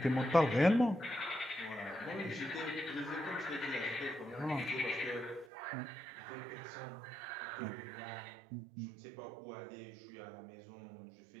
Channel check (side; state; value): left; drops out; at 5.5 s